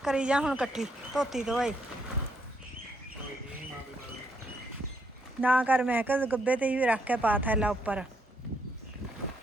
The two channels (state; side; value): normal; both; correlation 0.74